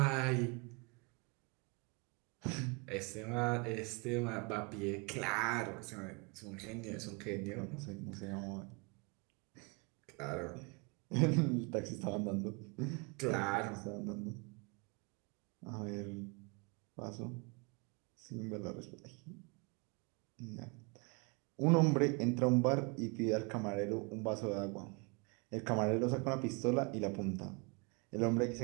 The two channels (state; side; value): quieter; left; 31.0 dB